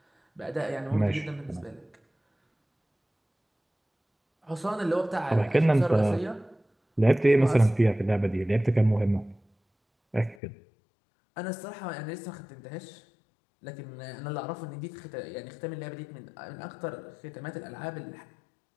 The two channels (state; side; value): drops out; right; at 10.4 s